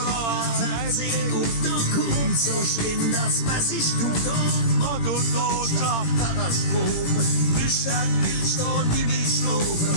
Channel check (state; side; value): late; right; 17 ms